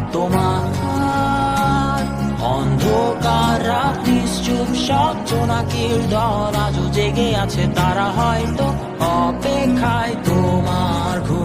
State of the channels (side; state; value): both; identical; correlation 1.00